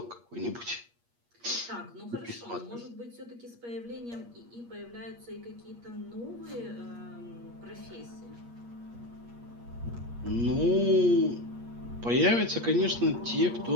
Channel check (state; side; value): late; left; 8.5 ms